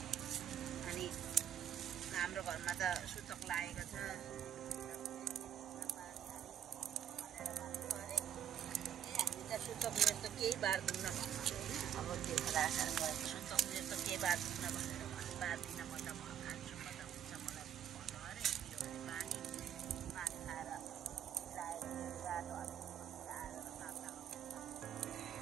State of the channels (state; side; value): quieter; left; 9.7 dB